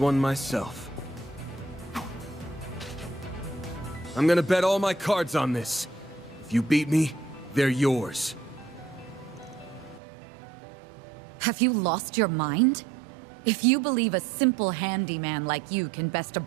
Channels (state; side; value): drops out; left; at 10.0 s